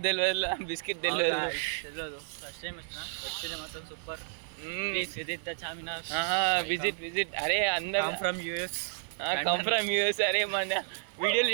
తెలియదు, బిస్కెట్ తెలియదు. ఫస్ట్ టైం వచ్చిన ఎక్స్పీరియన్స్ మాత్రం super. Visit the Charminar. Visit అరే అందరు from US. Come from US. అరే మన వీడియోలు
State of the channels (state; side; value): silent; left; 57 dB below the other